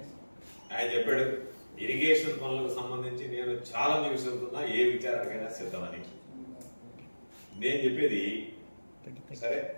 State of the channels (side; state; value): both; inverted; correlation -1.00